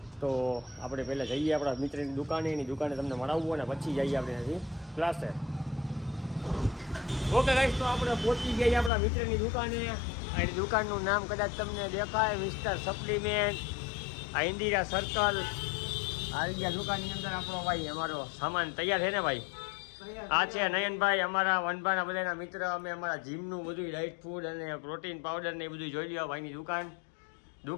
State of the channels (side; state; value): right; drops out; at 8.9 s